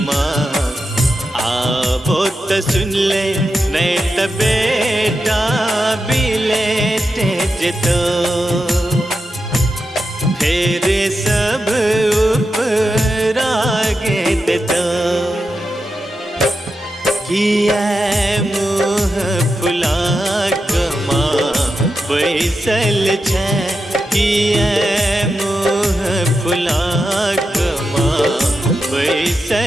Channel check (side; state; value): both; normal; correlation 0.89